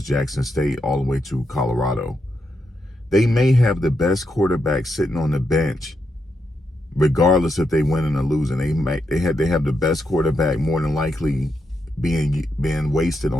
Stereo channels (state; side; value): normal; both; correlation 0.83